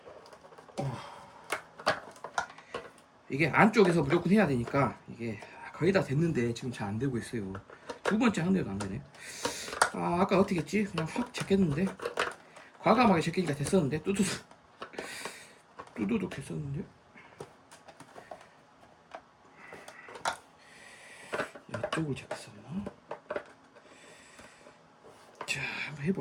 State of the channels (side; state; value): both; identical; correlation 1.00